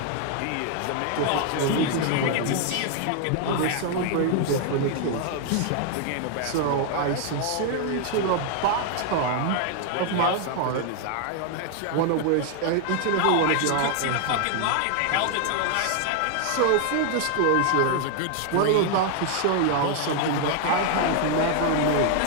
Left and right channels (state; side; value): different; both; correlation 0.00